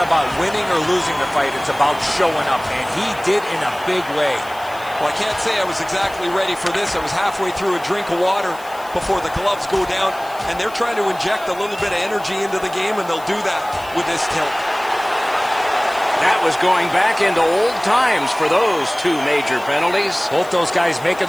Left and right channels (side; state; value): left; noise; hiss, 21 dB below the sound